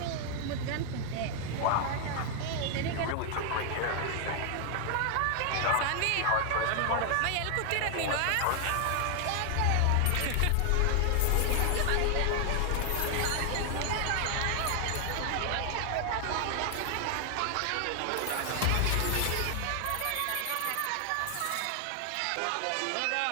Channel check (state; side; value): different; both; correlation 0.00